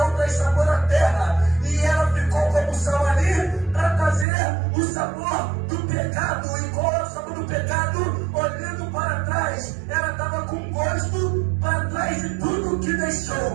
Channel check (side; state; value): left; drops out; at 4.2 s